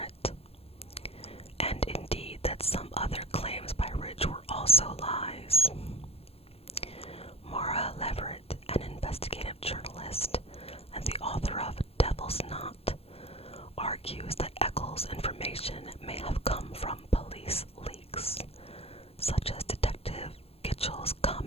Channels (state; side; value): late; right; 0.29 ms